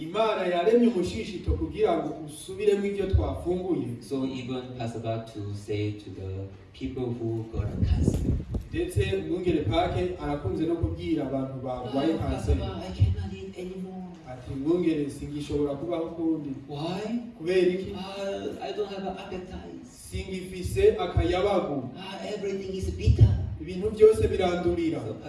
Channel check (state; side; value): identical; both; correlation 1.00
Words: yaremye umushishito kugira ngo usubiremo ibyo twafunguye. So even Pastor Bach to say to the people who got a cancer, ndetse umwungere pake arakunze no kubwira abantu barwaye kanseri, I cannot eat anymore. ati mwungere singishobora kubaho ukundi. Why? Kubera iki? I don't have an appetite. Singifise akayabagu. Everything is bitter. Ibintu byose birandurira. So